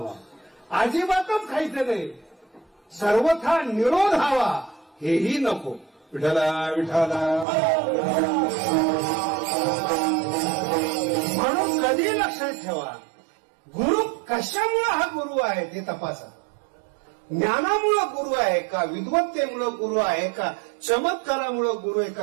अजिबातच खायचं नाही, सर्वथा निरोध हवा हेही नको. विठ्ठला विठ्ठला. म्हणून कधी लक्षात ठेवा, गुरु कशामुळे हा गुरु आहे ते तपासा. ज्ञानामुळं गुरु आहे का, विद्वत्तेमुळं गुरु आहे का, चमत्कारामुळं गुरु आहे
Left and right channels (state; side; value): drops out; left; at 7.5 s